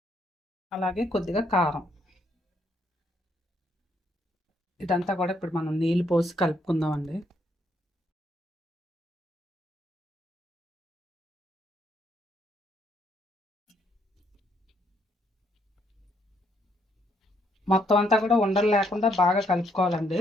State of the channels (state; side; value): normal; both; correlation 0.72